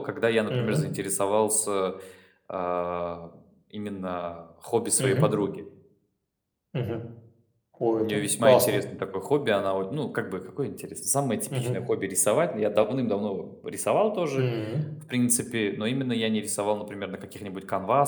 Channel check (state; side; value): identical; both; correlation 1.00